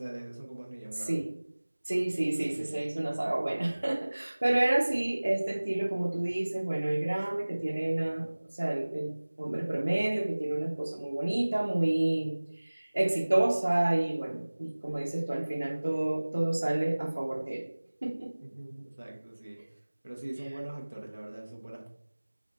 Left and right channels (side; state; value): both; inverted; correlation -1.00